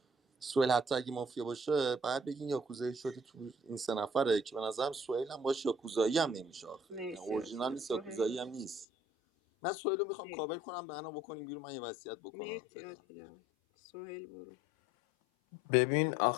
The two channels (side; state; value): right; drops out; at 8.8 s